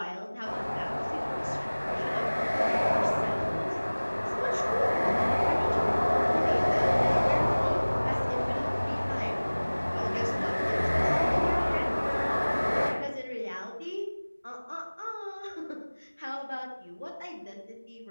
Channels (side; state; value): both; inverted; correlation -1.00